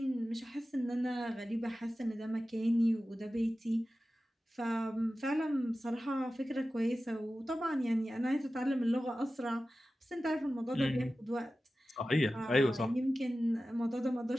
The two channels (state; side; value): normal; both; correlation 0.95